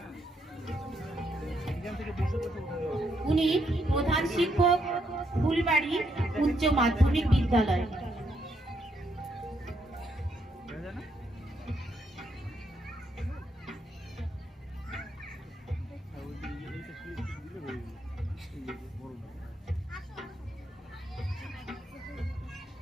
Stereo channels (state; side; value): normal; both; correlation 0.76